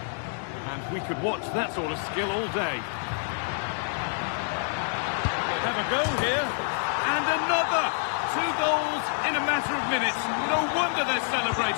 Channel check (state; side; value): silent; right; 58 dB below the other